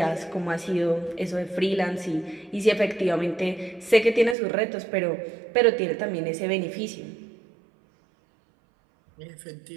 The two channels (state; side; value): drops out; left; at 4.4 s